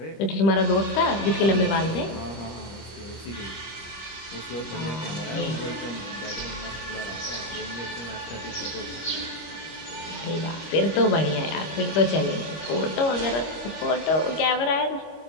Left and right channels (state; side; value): late; right; 25 ms